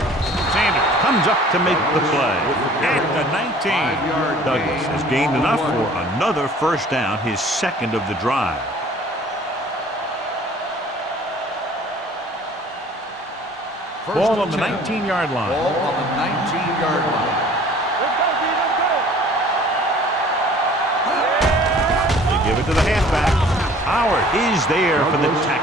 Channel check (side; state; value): both; normal; correlation 0.51